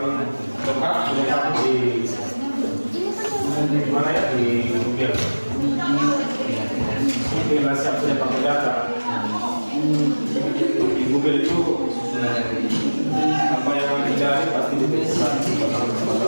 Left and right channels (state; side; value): inverted; both; correlation -1.00